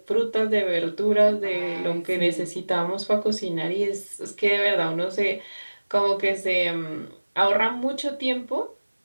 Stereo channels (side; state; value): both; inverted; correlation -1.00